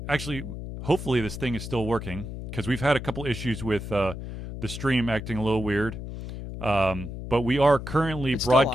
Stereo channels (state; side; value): noise; left; hum, 8 dB below the sound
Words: actually, hopefully this thing is still working, because we've had a couple issues with the stream acting a little weird. But we are currently